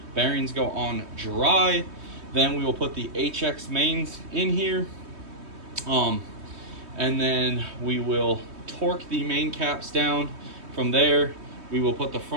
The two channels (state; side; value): late; left; 3.2 ms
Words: Bearings go on dry. Then we will put the HX mains in here. And then we will torque the main caps down. From there, we will put the